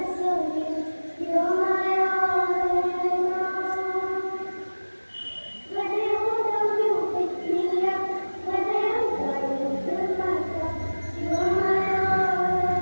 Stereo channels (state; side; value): inverted; both; correlation -1.00